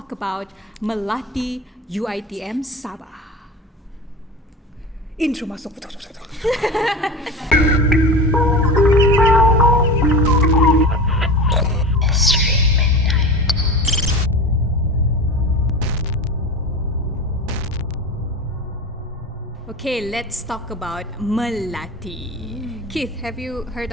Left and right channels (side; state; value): both; normal; correlation 0.29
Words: about Melati UiTM Sabah. Intro masuk. Okay, let's talk about Melati. Keith, have you heard